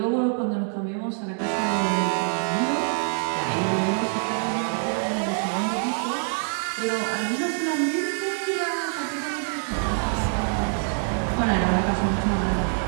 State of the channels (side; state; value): left; silent; 56 dB below the other